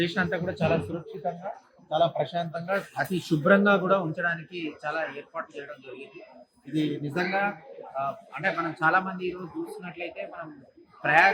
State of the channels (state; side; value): identical; both; correlation 1.00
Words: అంతా కూడా చాలా సురక్షితంగా, చాలా ప్రశాంతంగా, అతి శుభ్రంగా కూడా ఉంచడానికి చాలా ఏర్పాటు చేయడం జరిగింది. ఇది నిజంగా అంటే మనం చాలా మంది ఈరోజు చూస్తున్నట్లయితే మనం